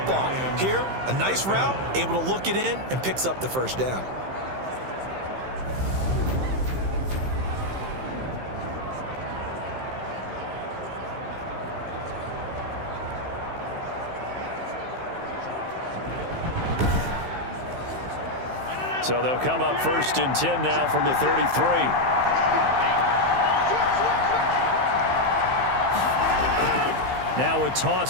Here, a nice route, able to look it in, and picks up the first down. So they'll come up 1st and 10 now from the 33. Now a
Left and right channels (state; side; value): late; left; 15 ms